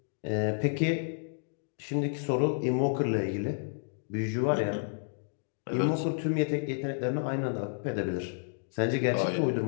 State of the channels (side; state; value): right; silent; digital silence